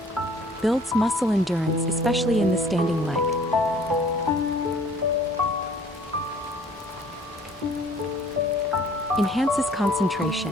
Builds muscle endurance, especially in the standing leg. Enhances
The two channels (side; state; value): both; normal; correlation 0.54